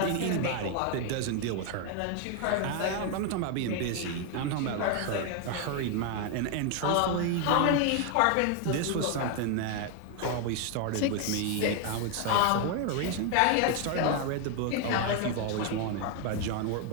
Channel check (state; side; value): different; both; correlation 0.01